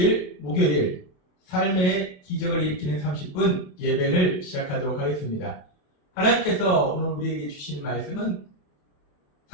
목요일 삶의 기적을 일으키는 30분 예배를 시작하도록 하겠습니다. 하나님께서 오늘 우리에게 주시는 말씀은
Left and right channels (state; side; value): late; right; 27 ms